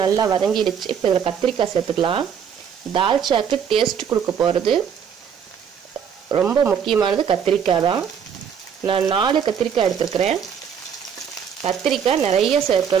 நல்லா வதங்கிடுச்சு. இப்போ இதில் கத்திரிக்காய் சேர்த்துக்கலாம். தால்ச்சாக்கு டேஸ்ட் கொடுக்க போகிறது ரொம்ப முக்கியமானது கத்திரிக்காய் தான். நான் 4 கத்திரிக்காய் எடுத்துருக்கிறேன். கத்திரிக்காய் நிறைய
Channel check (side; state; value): left; quieter; 7.6 dB